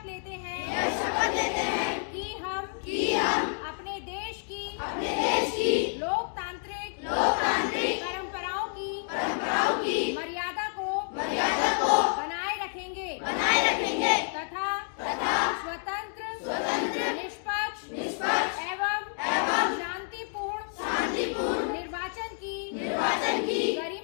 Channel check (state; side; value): silent; right; 58 dB below the other